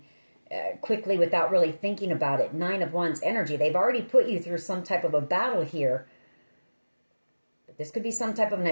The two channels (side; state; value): both; inverted; correlation -1.00